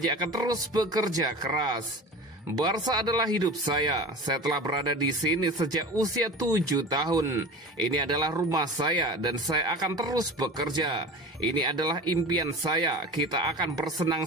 akan terus bekerja keras. Barca adalah hidup saya telah berada di sini sejak usia 7 tahun. Ini adalah rumah saya dan saya akan terus bekerja. Ini adalah impian saya, kita akan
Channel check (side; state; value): both; normal; correlation 0.34